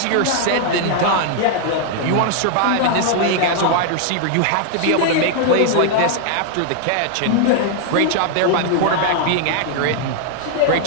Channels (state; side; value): different; both; correlation 0.00